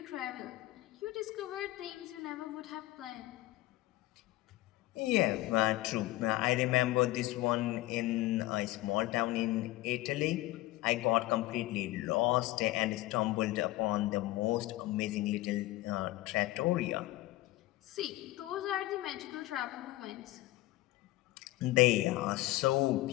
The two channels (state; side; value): quieter; right; 17.7 dB